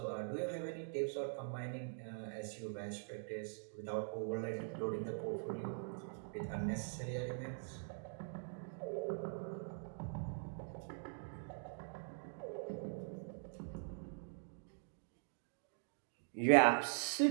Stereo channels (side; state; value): left; silent; digital silence